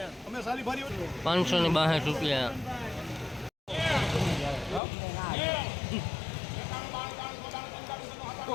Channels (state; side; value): drops out; right; at 4.8 s